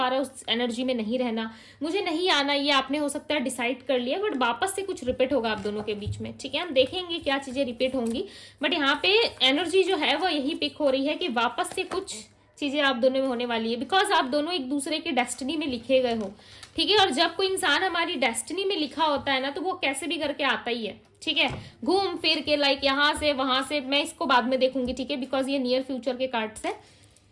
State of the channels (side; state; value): both; identical; correlation 1.00